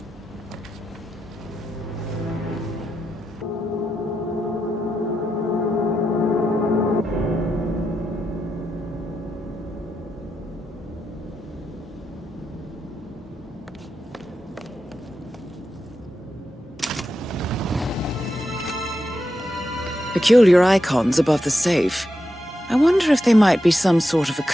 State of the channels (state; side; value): normal; both; correlation 0.87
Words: Peculiar icons above the safe. I wonder if they might be some sort of a